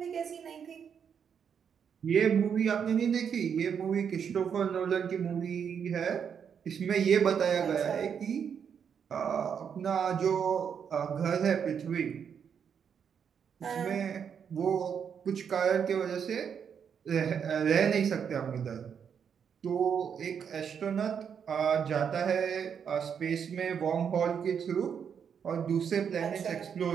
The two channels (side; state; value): left; quieter; 7.4 dB